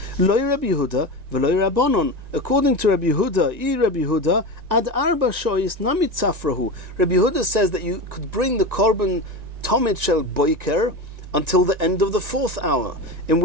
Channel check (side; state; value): left; late; 1.9 ms